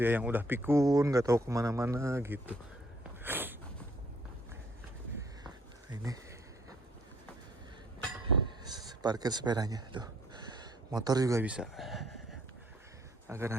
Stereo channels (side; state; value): both; normal; correlation 0.65